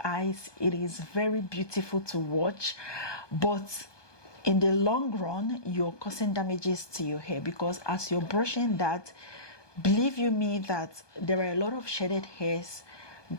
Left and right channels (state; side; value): late; right; 1.2 ms